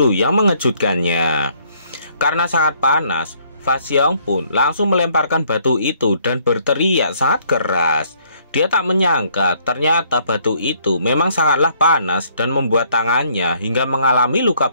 yang mengejutkannya. Karena sangat panas, Fasyong pun langsung melemparkan batu itu dan berteriak sangat keras. Dia tak menyangka ternyata batu itu memang sangatlah panas dan membuat tangannya hingga mengalami luka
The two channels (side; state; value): both; inverted; correlation -0.65